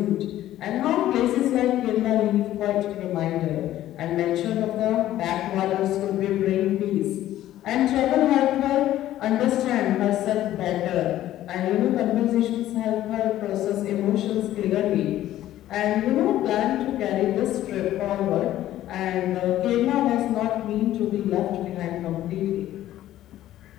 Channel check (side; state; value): right; quieter; 13.5 dB